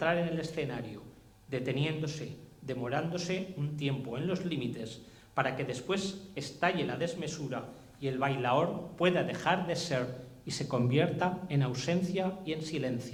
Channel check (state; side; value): identical; both; correlation 1.00